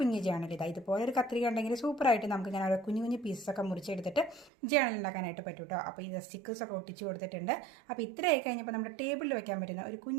ജേണൽ ഇതാ. ഇതുപോലെ ഒരു കത്രിക ഉണ്ടെങ്കിൽ സൂപ്പറായിട്ട് നമുക്ക് ഇങ്ങനെ ഓരോ കുഞ്ഞു കുഞ്ഞു പീസൊക്കെ മുറിച്ചെടുത്തിട്ട് ജേണൽ ഉണ്ടാക്കാനായിട്ട് പറ്റും കേട്ടോ. അപ്പോൾ ഇത് സ്റ്റിക്കേഴ്സൊക്കെ ഒട്ടിച്ച് കൊടുത്തിട്ടുണ്ട്. അപ്പോൾ ഇത്രയായി കഴിഞ്ഞപ്പോൾ നമ്മുടെ ടേബിളിൽ വെക്കാൻ പറ്റുന്ന ഒരു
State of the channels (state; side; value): drops out; left; at 4.5 s